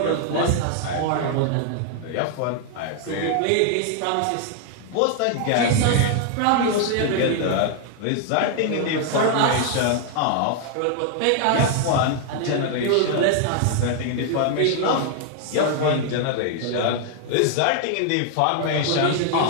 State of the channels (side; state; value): both; different; correlation 0.00